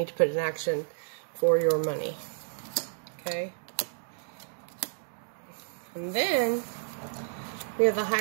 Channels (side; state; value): left; silent; digital silence